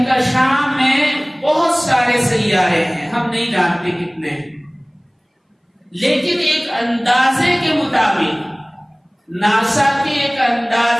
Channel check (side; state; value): both; identical; correlation 1.00